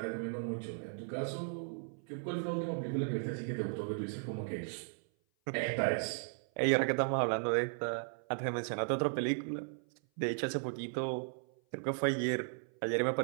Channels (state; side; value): silent; left; 54 dB below the other